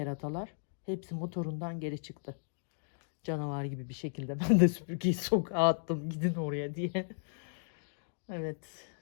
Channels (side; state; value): right; silent; digital silence